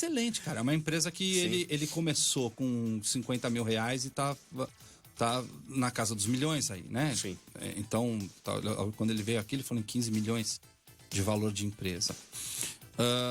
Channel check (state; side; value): identical; both; correlation 1.00